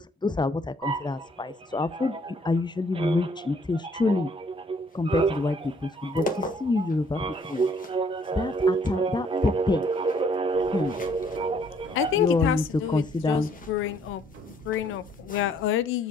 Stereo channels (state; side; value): normal; both; correlation 0.64